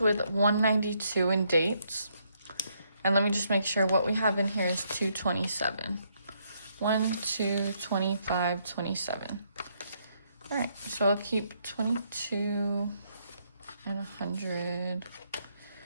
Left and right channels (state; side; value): inverted; both; correlation -0.73